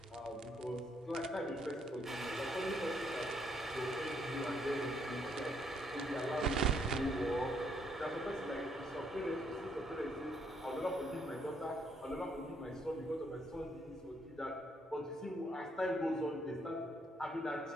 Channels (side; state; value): both; normal; correlation 0.71